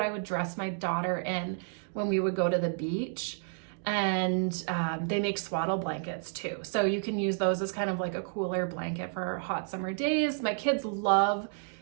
I would dress my daughter in when we would go to the beach. And they make swaddle blankets too. So you can use those as kind of like a cooler blanket for hot summer days. My kids love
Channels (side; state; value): left; silent; digital silence